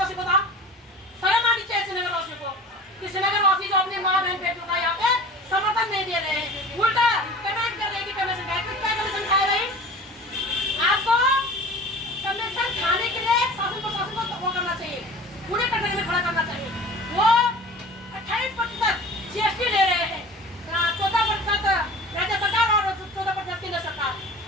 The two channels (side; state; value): both; normal; correlation 0.40